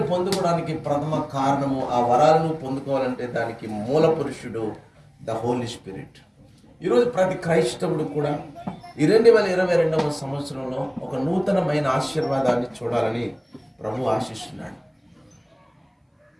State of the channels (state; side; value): identical; both; correlation 1.00